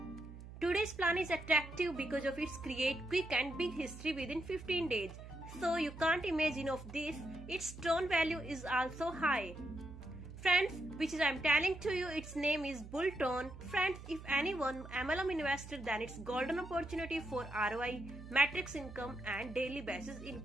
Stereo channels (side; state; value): right; noise; hum, 14 dB below the sound